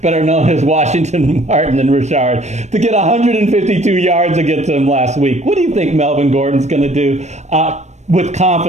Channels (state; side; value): late; left; 0.33 ms